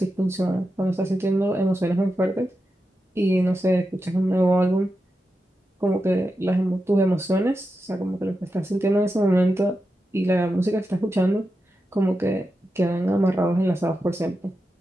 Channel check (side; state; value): both; normal; correlation 0.89